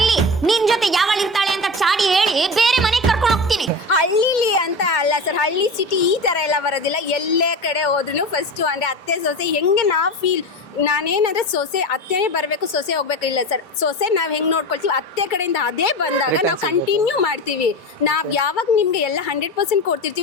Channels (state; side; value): normal; both; correlation 0.27